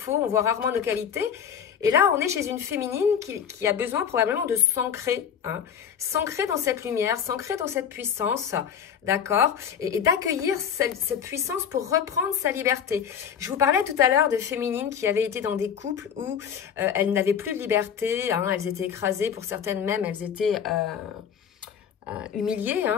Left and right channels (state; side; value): quieter; right; 8.0 dB